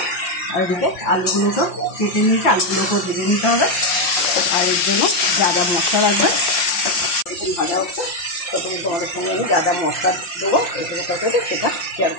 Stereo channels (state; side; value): late; right; 5.7 ms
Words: আর এদিকে আলুগুলো সব কেটে নিয়েছি, আলুগুলো সব ভেজে নিতে হবে। আর এর জন্য যা যা মশলা লাগবে এখন ভাজা হচ্ছে, তখন তোমাদের সঙ্গে আমি যা যা মশলা দেবো এখানে তরকারিতে সেটা শেয়ার